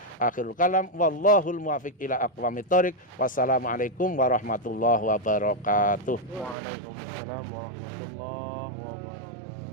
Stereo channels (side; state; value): left; drops out; at 6.6 s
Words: Akhirul kalam wallahul muwaffiq ila aqwamit thoriq. Wassalamualaikum warahmatullahi wabarakatuh. Waalaikumsalam warahmatullahi wabarakatuh.